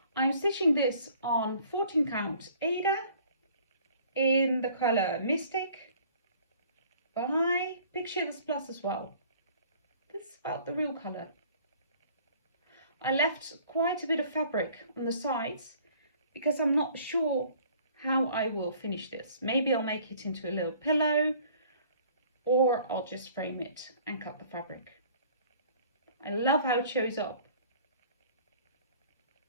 I'm stitching this on 14 count Aida in the colour Mystic by Pictures Plus as well. This is about the real colour. I left quite a bit of fabric on the sides because I'm not sure how I will finish this. Maybe I'll make it into a little pillow, or I'll just frame it and cut the fabric. I love how it shows up.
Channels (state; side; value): inverted; both; correlation -0.54